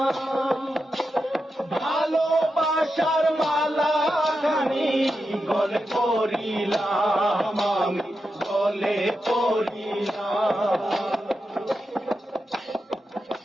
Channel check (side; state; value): both; normal; correlation 0.88